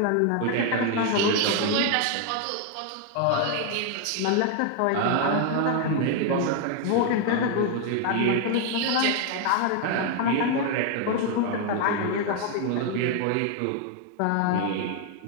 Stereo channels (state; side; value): different; both; correlation 0.01